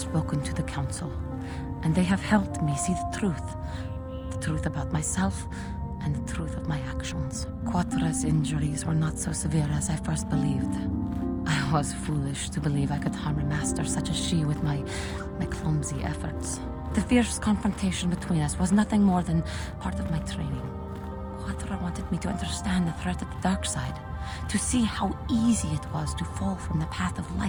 to the Council, and they have helped me see the truth about myself and the truth of my actions. Quatra's injuries were not so severe as I first believed. I was foolish to believe I could harm a master such as she with my clumsy efforts. The fierce confrontation between us was nothing more than part of my training. Quatra wanted me to understand the threat of the dark side, to see how easy it was to fall from the path of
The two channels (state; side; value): identical; both; correlation 1.00